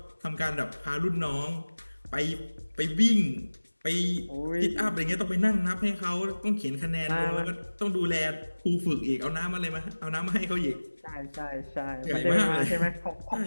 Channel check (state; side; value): inverted; both; correlation -1.00